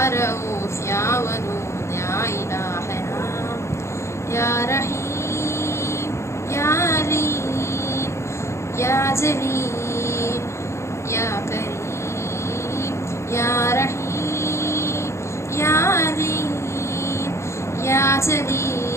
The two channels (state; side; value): late; right; 0.13 ms